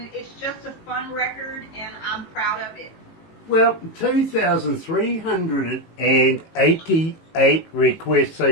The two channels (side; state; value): right; late; 18 ms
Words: it's just a fun record, and I'm proud of it. Well, 2,388 requests